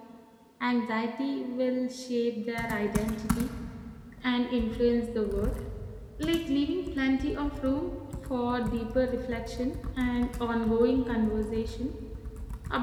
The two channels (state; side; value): identical; both; correlation 1.00